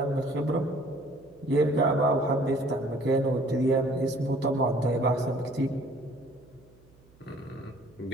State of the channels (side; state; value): right; noise; hum, 29 dB below the sound